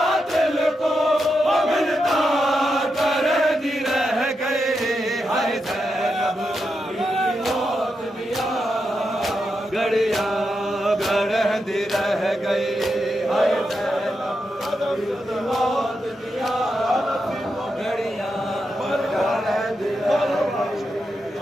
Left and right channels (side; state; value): both; normal; correlation 0.86